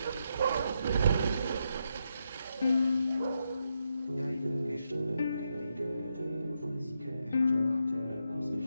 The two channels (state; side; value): inverted; both; correlation -0.82